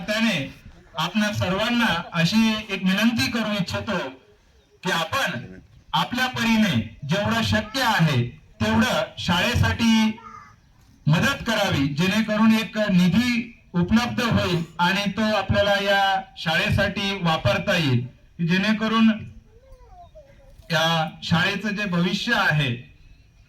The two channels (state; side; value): identical; both; correlation 1.00